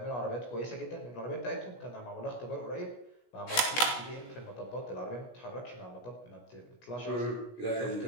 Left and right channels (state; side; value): late; right; 16 ms